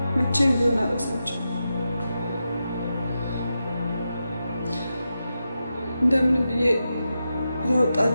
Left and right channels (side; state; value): both; inverted; correlation -0.89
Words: መቼም ቢሆን አልረሳቸውም። እንደምንም ብዬ